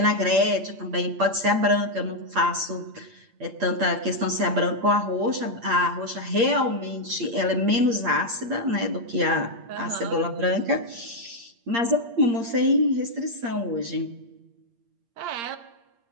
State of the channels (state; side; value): late; left; 8.6 ms